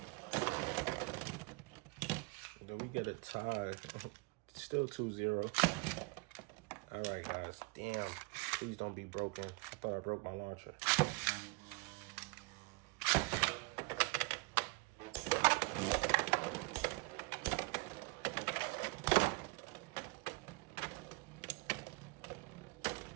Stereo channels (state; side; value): quieter; left; 27.1 dB